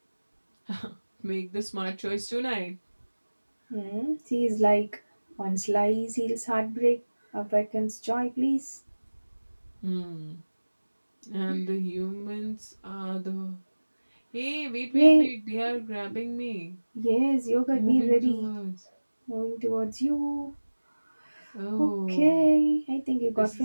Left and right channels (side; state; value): both; inverted; correlation -1.00